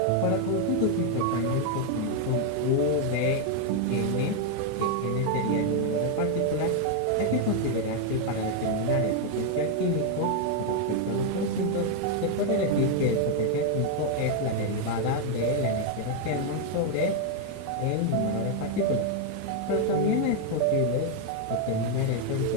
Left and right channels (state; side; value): different; both; correlation 0.01